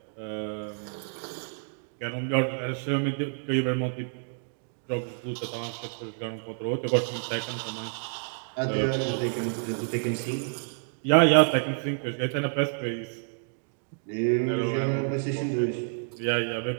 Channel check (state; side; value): silent; left; 59 dB below the other